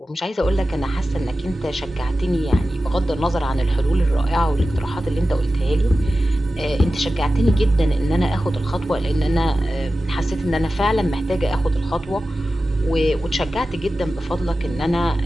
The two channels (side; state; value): both; normal; correlation 0.94